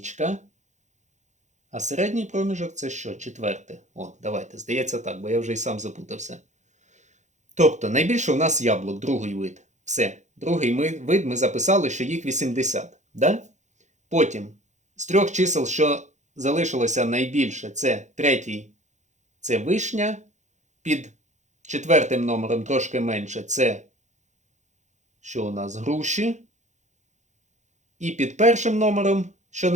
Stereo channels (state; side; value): late; left; 0.34 ms